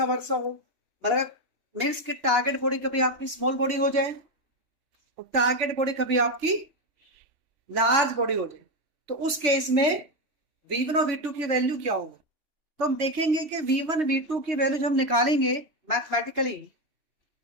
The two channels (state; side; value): late; left; 3.5 ms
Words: वर्सा हो, मतलब मीन्स कि टारगेट बॉडी कभी आपकी स्मॉल बॉडी हो जाए और टारगेट बॉडी कभी आपकी लार्ज बॉडी हो जाए, तो उस केस में v1 और v2 की वैल्यू क्या होगा? तो हम देखेंगे कि v1 v2 की वैल्यू जब हम निकालेंगे मैथमेटिकली,